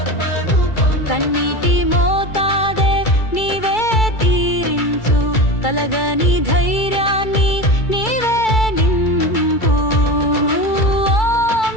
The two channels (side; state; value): right; late; 2.3 ms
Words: పొందు కన్నీటి మోతాదే నీవే తీరించు కలగని ధైర్యాన్ని నీవే నింపు ఓం